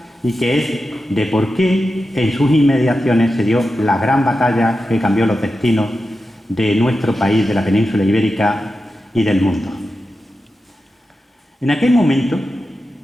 y que es de por qué en sus inmediaciones se dio la gran batalla que cambió los destinos de nuestro país, de la península ibérica y del mundo. En aquel momento,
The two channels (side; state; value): both; normal; correlation 0.91